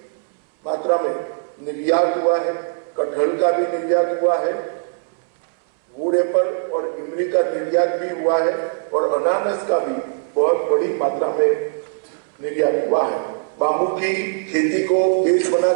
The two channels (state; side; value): silent; left; 65 dB below the other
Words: मात्रा में निर्यात हुआ है। कटहल का भी निर्यात हुआ है। वुड एप्पल और इमली का निर्यात भी हुआ है और अनानास का भी बहुत बड़ी मात्रा में निर्यात हुआ है। बांबू की खेती को बेस